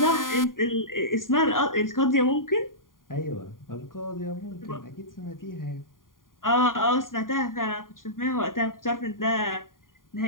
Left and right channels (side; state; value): right; late; 0.90 ms